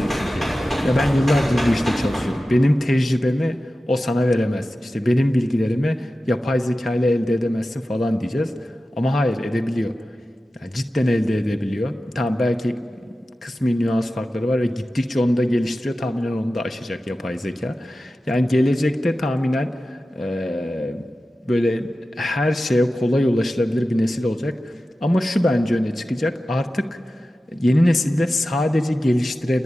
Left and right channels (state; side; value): normal; both; correlation 0.94